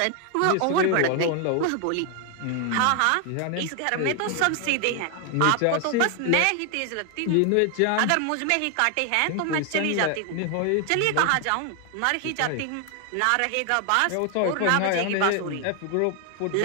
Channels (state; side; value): different; both; correlation 0.00